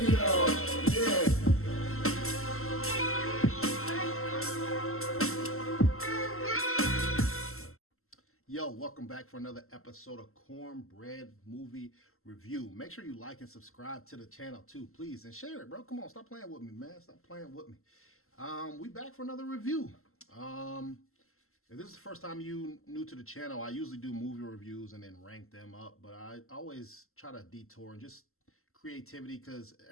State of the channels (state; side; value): late; right; 0.62 ms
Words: y'all. Yeah. Yo, welcome back for another episode of Cornbread Movie Review. Make sure you like and subscribe to the channel too, please, and share it, bro. Come on, stop playing with me, man. Stop playing with me. We back for another review. If this is the first time you new to the channel, I usually do movie reviews and then rank them up, but I always try to detour and just creativity, because